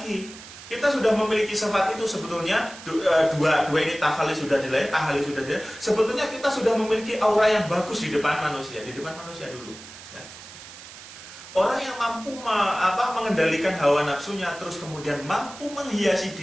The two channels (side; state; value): right; noise; hiss, 16 dB below the sound